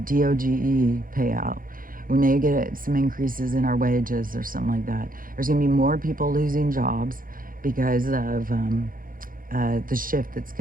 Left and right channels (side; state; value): left; late; 0.40 ms